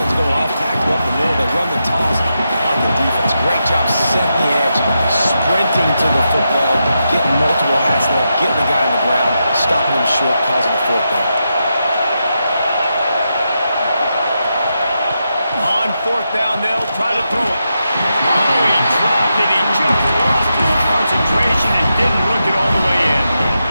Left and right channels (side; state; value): both; inverted; correlation -0.86